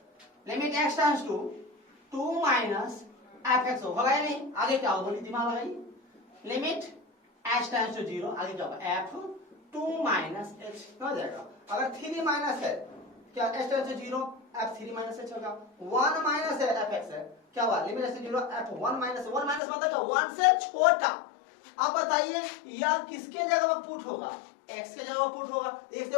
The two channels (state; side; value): drops out; right; at 19.6 s